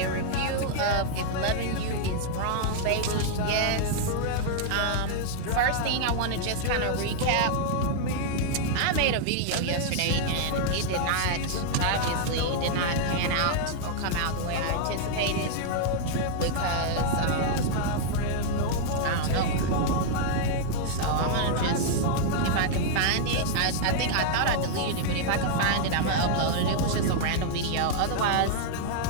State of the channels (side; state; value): both; different; correlation -0.01